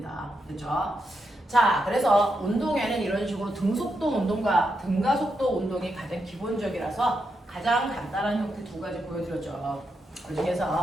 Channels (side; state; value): both; normal; correlation 0.84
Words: 그렇죠? 자, 그래서 운동에는 이런 식으로 등속도 운동과 등가속도 운동이 가장 기본적이라서 가장 간단한 형태 두 가지 보여드렸죠. 그